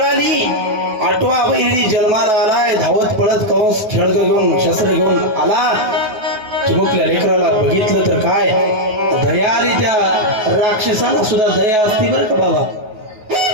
8वा बहिणी जन्माला आलाय. धावत पडत कंस खेळग घेऊन शस्त्र घेऊन आला. चिमुकल्या लेकराला बघितलं तर काय दया आली. त्या राक्षसाला सुद्धा दया असते बरं का बाबा.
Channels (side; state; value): left; late; 9.4 ms